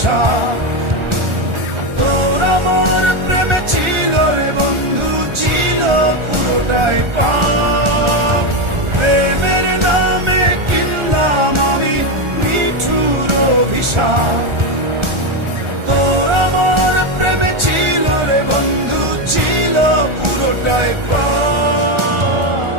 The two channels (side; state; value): left; late; 1.4 ms